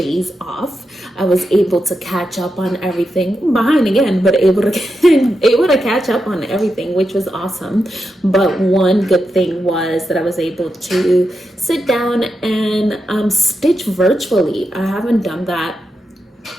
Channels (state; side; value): normal; both; correlation 0.87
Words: off. I was able to catch up on everything, behind again, but able to catch up on everything, which was awesome. But one good thing was that I was able to sit down and stitch virtually. I haven't done that